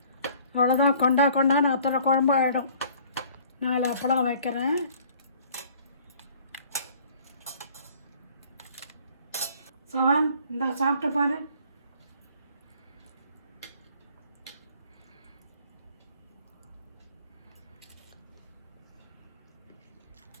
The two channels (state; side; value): inverted; both; correlation -0.55